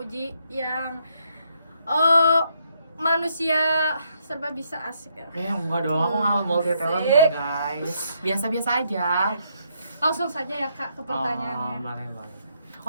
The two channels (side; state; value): both; inverted; correlation -0.75